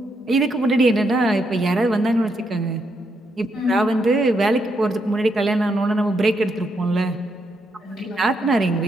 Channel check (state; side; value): normal; both; correlation 0.79